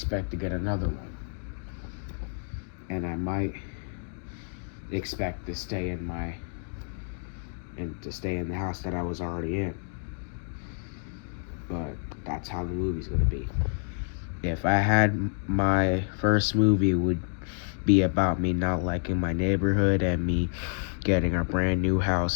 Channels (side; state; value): right; silent; 59 dB below the other